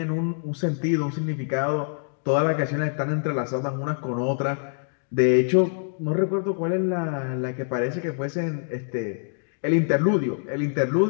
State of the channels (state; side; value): silent; right; digital silence